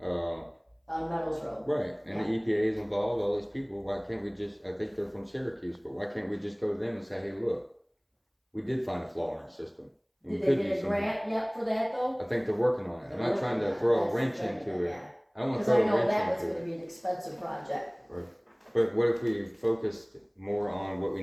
On Meadows Road. Right, and Yeah. the EPA is involved, all these people, why can't we just, I think they're from Syracuse, but why can't we just go to them and say, hey, look, we did find a flaw in our system. and we Did could they use get a some- grant yet for that though? I think they're working on it. I'm They're not trying working to on throw a That's wrench the thing, into it. yeah. I don't wanna Cause throw I a know wrench that was into gonna it. be an expensive project. But what if we focused more on what we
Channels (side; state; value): both; identical; correlation 1.00